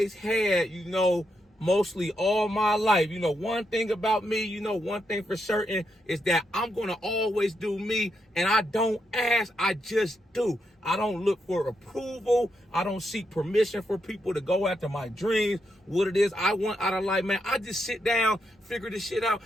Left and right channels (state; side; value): normal; both; correlation 0.82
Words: had, mostly all my life. One thing about me, one thing for certain is that I'm going to always do me, and I don't ask, I just do. I don't look for approval. I don't seek permission for people to go after my dreams, what it is I want out of life, man. I just sit down, figure this shit out,